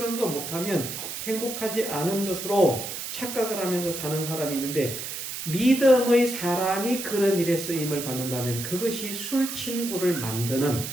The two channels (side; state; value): right; noise; hiss, 6 dB below the sound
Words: 거 못하면 행복하지 않은 것으로 착각을 하면서 사는 사람이 있는데, 믿음의 사람이 그런 일에 쓰임을 받는다면 그것이 술 친구를 만드는